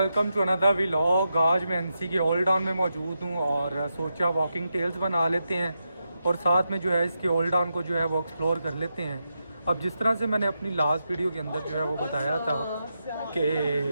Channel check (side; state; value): both; inverted; correlation -0.87